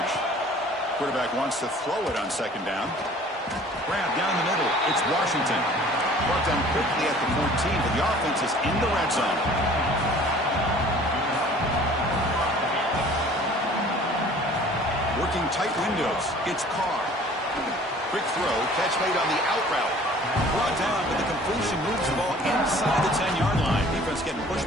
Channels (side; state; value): both; normal; correlation 0.50